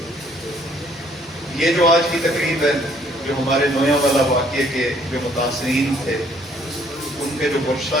یہ جو آج کی تقریب ہے، جو ہمارے نویاں والا واقعے کے جو متاثرین تھے، ان کے جو ورثہ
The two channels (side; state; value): both; normal; correlation 0.63